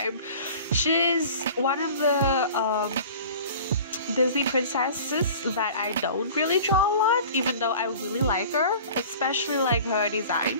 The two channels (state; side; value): inverted; both; correlation -0.42